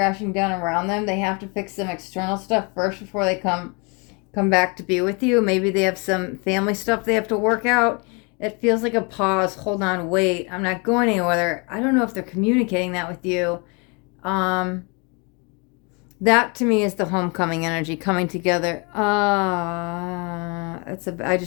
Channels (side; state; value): right; quieter; 32.0 dB